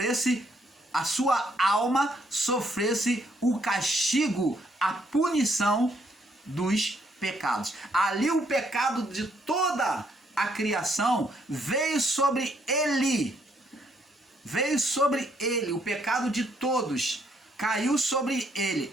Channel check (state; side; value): normal; both; correlation 0.71